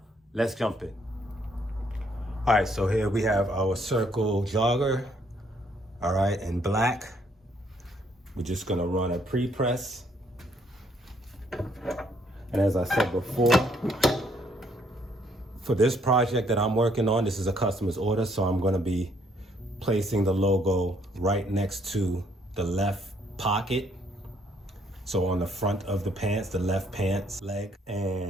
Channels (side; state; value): both; normal; correlation 0.68